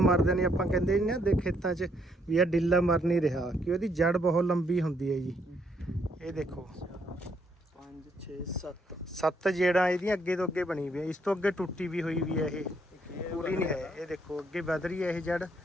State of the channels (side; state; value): both; normal; correlation 0.72